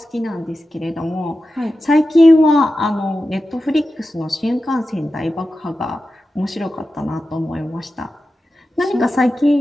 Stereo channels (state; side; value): normal; both; correlation 0.92